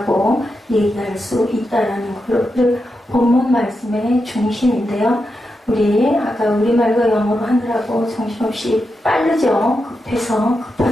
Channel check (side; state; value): both; normal; correlation 0.87